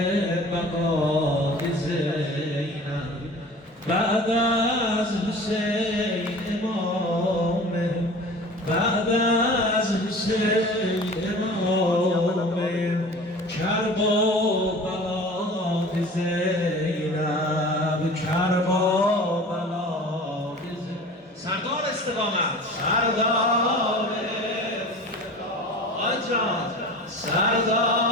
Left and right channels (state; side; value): normal; both; correlation 0.40